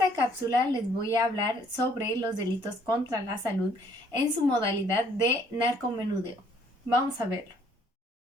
cápsula les voy a hablar sobre los delitos contra la salud en su modalidad de narcomenudeo. Vamos a verlo.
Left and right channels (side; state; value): both; normal; correlation 0.63